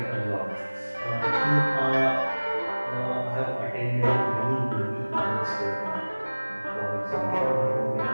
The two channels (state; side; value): inverted; both; correlation -1.00